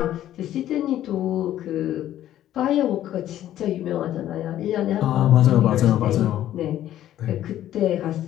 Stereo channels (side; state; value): right; quieter; 12.4 dB